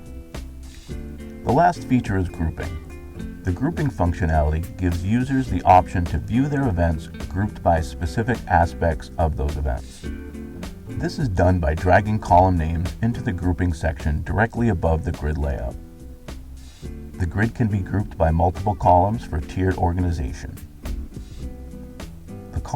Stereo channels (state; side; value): identical; both; correlation 1.00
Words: The last feature is grouping. The grouping functionality gives users the option to view their events grouped by specific aspects of those events. This is done by dragging column names into the grouping section directly above the grid layout. The grid can be grouped by multiple columns for tiered organization. The